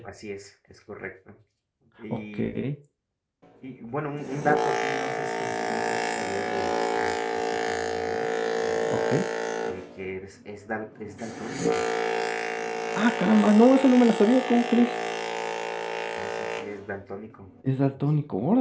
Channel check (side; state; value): both; identical; correlation 1.00